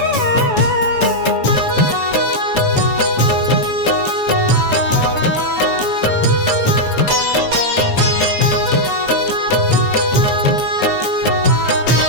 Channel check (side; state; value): right; late; 7.0 ms